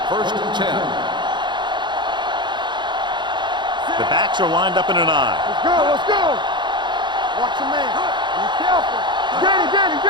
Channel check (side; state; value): left; late; 0.22 ms